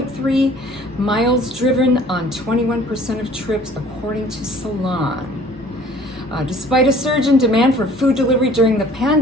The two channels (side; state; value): both; normal; correlation 0.52